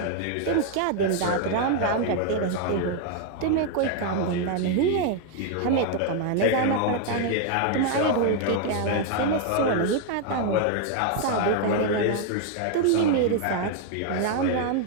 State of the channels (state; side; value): different; both; correlation 0.00